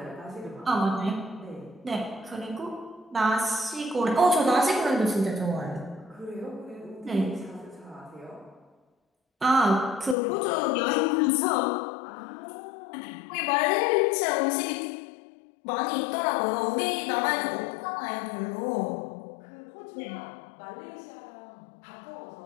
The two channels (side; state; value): right; drops out; at 10.2 s